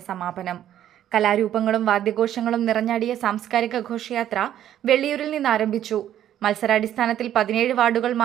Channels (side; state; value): left; quieter; 11.3 dB